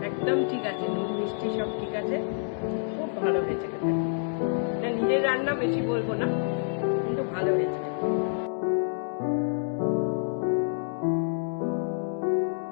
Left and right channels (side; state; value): right; silent; digital silence